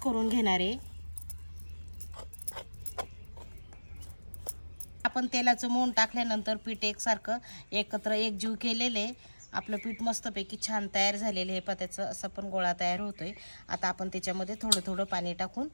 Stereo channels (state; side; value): inverted; both; correlation -1.00